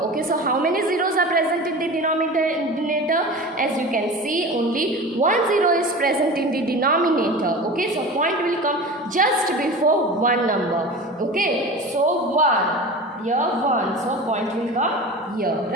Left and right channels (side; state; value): both; normal; correlation 0.33